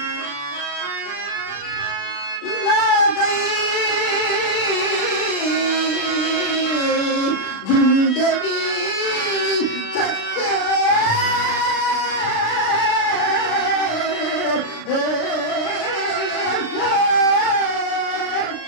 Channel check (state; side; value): late; right; 36 ms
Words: నాకై గుండెవి చచ్చే